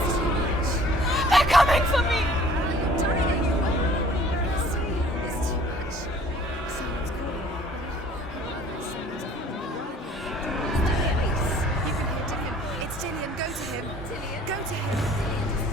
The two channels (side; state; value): both; normal; correlation 0.53